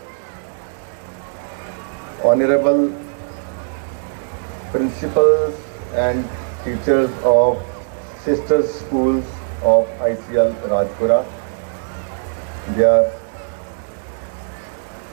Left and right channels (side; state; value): left; silent; digital silence